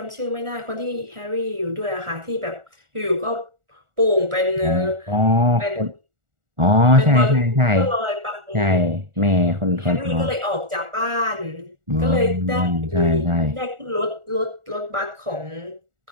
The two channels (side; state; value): left; late; 1.4 ms